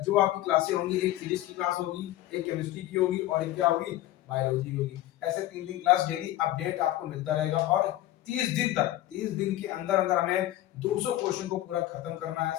जो आपकी क्लासें होंगी, एक फिजिक्स की क्लास होगी, एक केमिस्ट्री की होगी और एक क्या होगी, बायोलॉजी की होगी। ऐसे तीन तीन क्लास डेली अपडेट आपको मिलता रहेगा। और 30 दिन के अंदर अंदर हमें 200 क्वेश्चन को पूरा खत्म करना है,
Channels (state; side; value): quieter; right; 14.7 dB